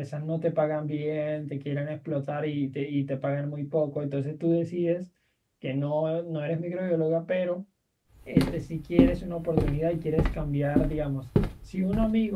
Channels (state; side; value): identical; both; correlation 1.00